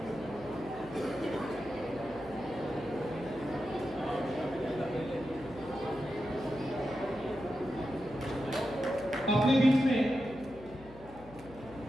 अपने बीच में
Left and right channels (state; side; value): noise; left; hum, 18 dB below the sound